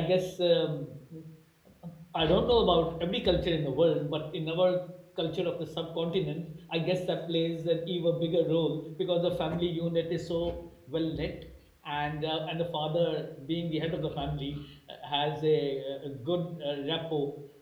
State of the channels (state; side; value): identical; both; correlation 1.00